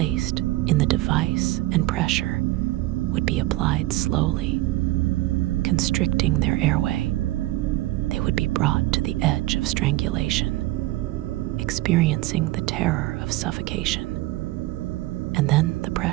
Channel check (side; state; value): left; quieter; 17.9 dB